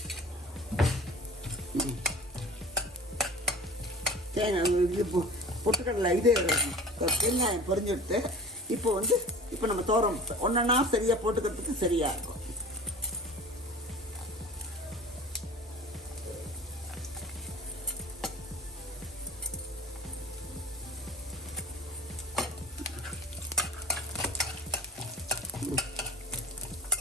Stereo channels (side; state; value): both; normal; correlation 0.38